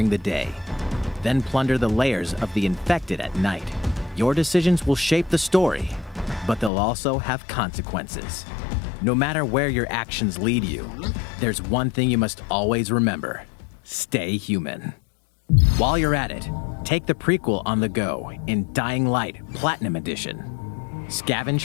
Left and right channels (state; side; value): drops out; right; at 6.7 s